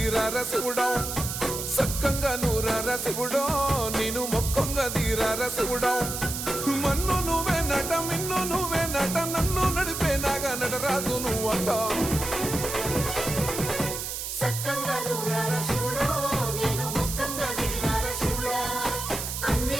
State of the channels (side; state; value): right; noise; hiss, 5 dB below the sound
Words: శివుడో సక్కంగా నూరార శివుడో నేను మొక్కంగా తీరార శివుడో మన్ను నువ్వే నట మిన్ను నువ్వే నట నన్ను నడిపే నాగా నటరాజు నువ్వంట